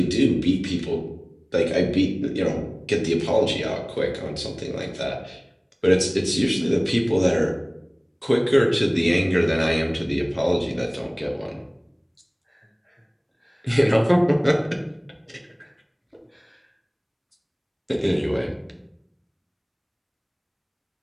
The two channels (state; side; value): identical; both; correlation 1.00